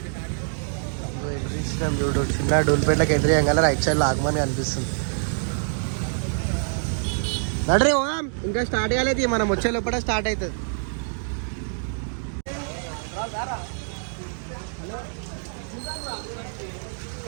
ఎదురిస్తున్నాం చూడు. చిన్న డూల్పేటలకు ఎదురేయంగా రైట్ సైడ్లో ఆగమని అనిపిస్తుంది. నడరే ఇంకా స్టార్ట్ కాలేదు. మనం వచ్చే లోపల స్టార్ట్ అవుతుంది.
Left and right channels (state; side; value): silent; left; digital silence